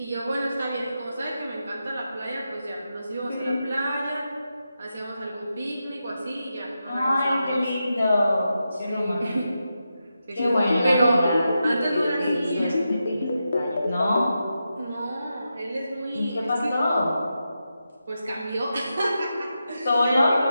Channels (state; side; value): inverted; both; correlation -0.88